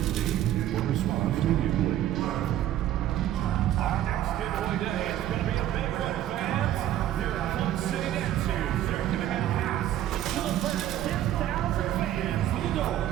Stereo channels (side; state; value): left; quieter; 12.4 dB